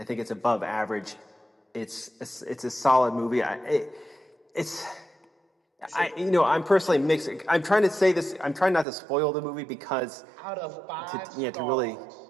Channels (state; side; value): drops out; left; at 8.8 s